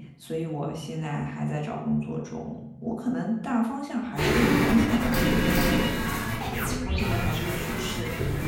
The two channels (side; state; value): both; identical; correlation 1.00